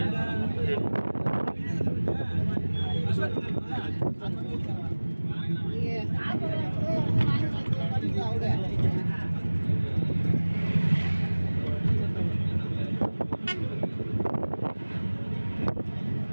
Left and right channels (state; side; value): inverted; both; correlation -1.00